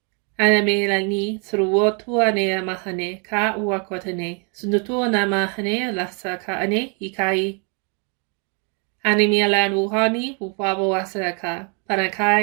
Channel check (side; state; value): left; quieter; 36.1 dB